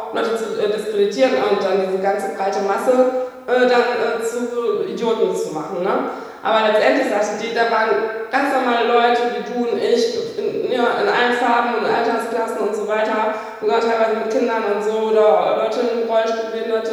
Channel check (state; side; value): identical; both; correlation 1.00